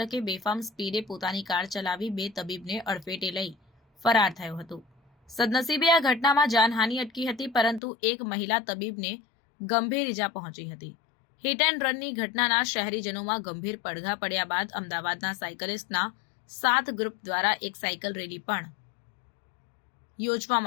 બેફામ સ્પીડે પોતાની કાર ચલાવી બે તબીબને અડફેટે લઈ ફરાર થયો હતો। સદનસીબે આ ઘટનામાં જાનહાનિ અટકી હતી, પરંતુ એક મહિલા તબીબને ગંભીર ઇજા પહોંચી હતી। હિટ એન્ડ રનની ઘટનાના શહેરીજનોમાં ગંભીર પડઘા પડ્યા બાદ અમદાવાદના સાયકલિસ્ટના 7 ગ્રુપ દ્વારા એક સાયકલ રેલી પણ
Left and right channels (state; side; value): drops out; right; at 7.8 s